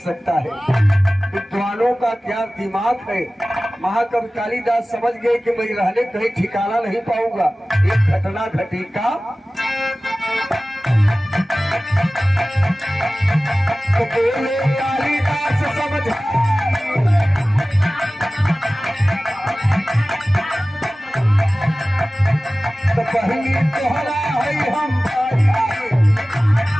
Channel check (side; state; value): both; normal; correlation 0.97